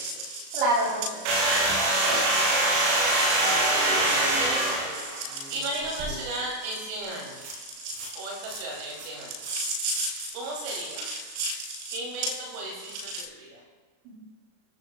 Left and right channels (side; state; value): left; late; 37 ms